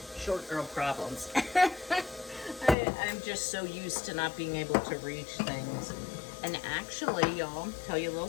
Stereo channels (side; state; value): right; drops out; at 2.8 s